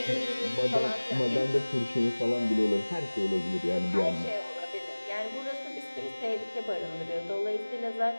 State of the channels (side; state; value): both; inverted; correlation -1.00